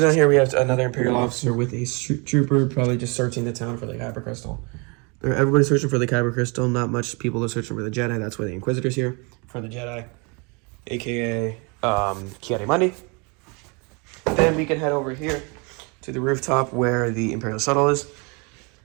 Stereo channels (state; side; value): quieter; left; 31.2 dB